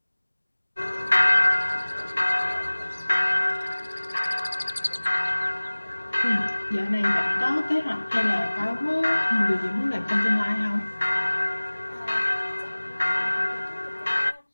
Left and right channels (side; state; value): both; inverted; correlation -1.00